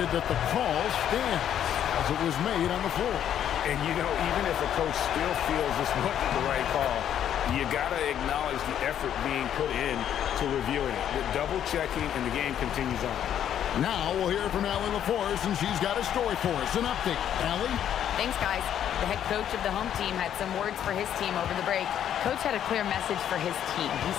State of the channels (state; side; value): quieter; right; 10.0 dB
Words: that the call stands as it was made on the floor. And, you know, even if a coach still feels this wasn't the right call, you got to acknowledge the effort being put in to reviewing it. With double-checking, and the game continues on. Now we'll hear from Allie LaForce, and she's got a story for us. An update. Allie? Thanks, guys. The head coach of the home team had some words for his team over the break. Coach had a clear message for his team. He